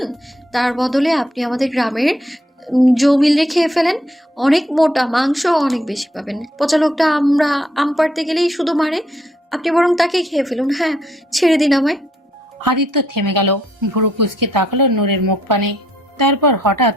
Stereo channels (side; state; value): both; normal; correlation 0.71